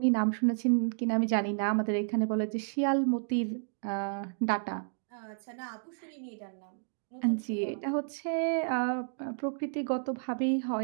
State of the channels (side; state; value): left; silent; digital silence